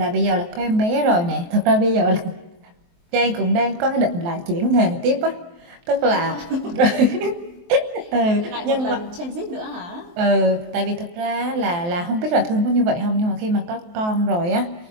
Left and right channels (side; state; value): left; late; 23 ms